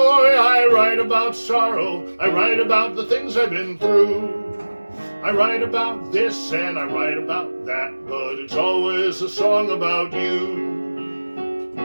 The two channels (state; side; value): inverted; both; correlation -1.00